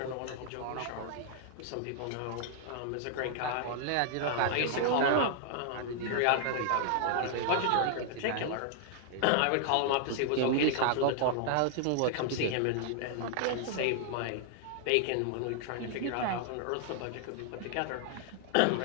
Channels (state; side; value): different; both; correlation 0.00